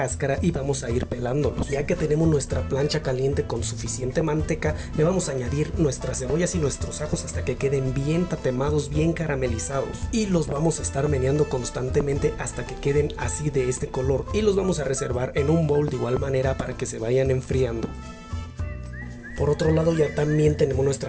y vamos a ir pelándolos. Ya que tenemos nuestra plancha caliente con suficiente manteca, le vamos a añadir nuestras cebollas y nuestros ajos hasta que queden bien tatemados, bien caramelizados, y los vamos a estar meneando constantemente hasta que queden así de este color, y los vamos a reservar en un bowl de igual manera para que se vayan enfriando. Por otro lado ya también tenemos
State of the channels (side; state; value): both; identical; correlation 1.00